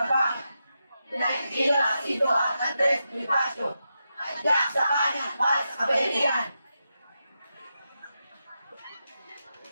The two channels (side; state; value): both; inverted; correlation -0.87